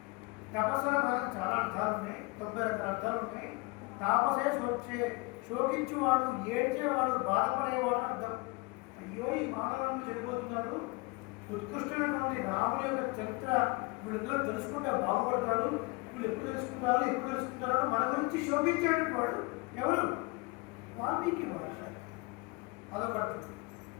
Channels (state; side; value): quieter; right; 26.3 dB